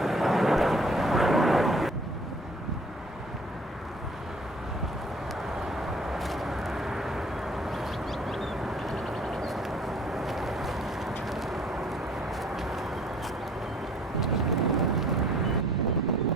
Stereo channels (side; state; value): both; normal; correlation 0.54